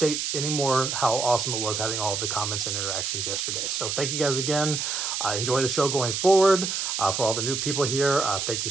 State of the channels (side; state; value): right; noise; hiss, 2 dB below the sound